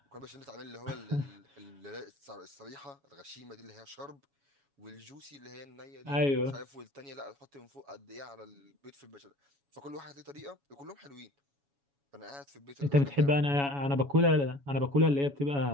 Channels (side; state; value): left; late; 7.1 ms